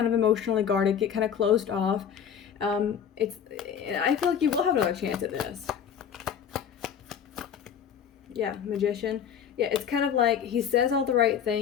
of emotionally guarded, get kind of closed off. I feel like you will have another chance at this. Yeah, magician. Yeah, it's kind of like he says all the right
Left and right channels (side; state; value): right; quieter; 8.2 dB